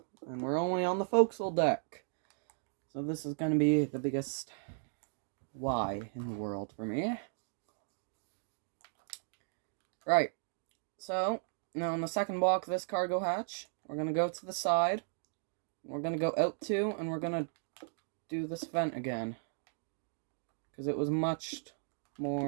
And we're only on the forecastle deck. So this is going to be the biggest why in the world for me. Right. So, now on the second block of this cargo hatch, we're going to go to the side. We're going to go out 2, and we're going to do this vent again. Because it was much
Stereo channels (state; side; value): silent; left; digital silence